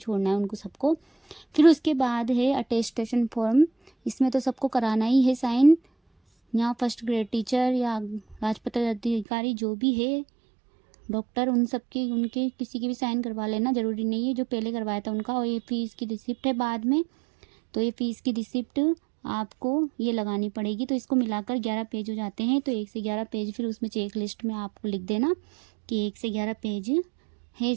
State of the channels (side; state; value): left; drops out; at 9.2 s